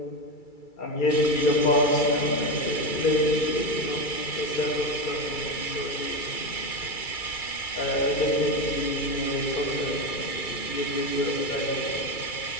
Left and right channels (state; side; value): late; right; 2.3 ms